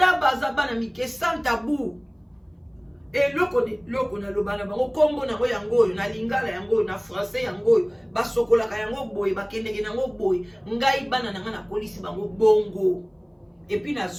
baza bana mike sans tabou et loko na lobana bango kombo na ngo yango na lingala yango na français yango basokola ka yango boy bakendeke nango boy ngai bana nga na police bango bongo et puis na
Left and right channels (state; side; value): identical; both; correlation 1.00